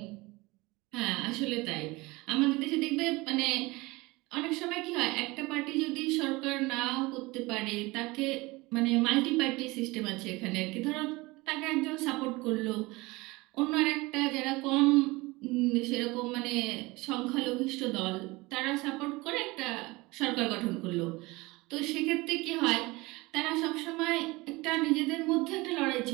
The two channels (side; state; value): left; quieter; 22.6 dB